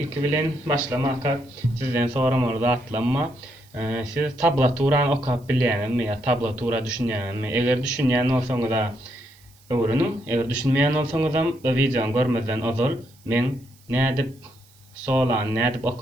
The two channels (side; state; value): right; noise; hiss, 29 dB below the sound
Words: bilen başlamaka sizden soramol zatlanma. Siz tablaturany okap bilýänmi ýa tablatura düşünýänmi? Eger düşünýän bolsaňyz da öwrüniň. Eger düşünmeýän bolsaňyzam bu videoňy görmezden ozal men nädip solan, nädip